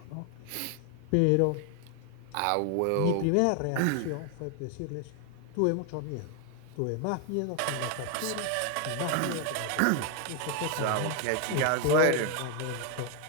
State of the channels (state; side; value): different; both; correlation 0.00